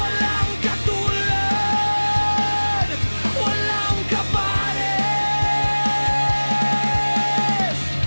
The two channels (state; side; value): inverted; both; correlation -1.00